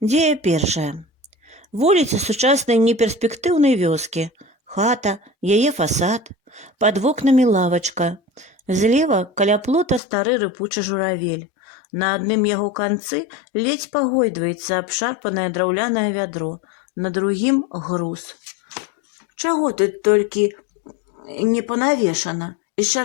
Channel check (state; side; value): drops out; right; at 10.0 s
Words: першая. Вуліца сучаснай неперспектыўнай вёскі. Хата, яе фасад, пад вокнамі лавачка. Злева каля плота стары рыпучы журавель. На адным яго канцы ледзь пагойдваецца абшарпанае драўлянае вядро, на другім груз. Чаго тут толькі не панавешана? І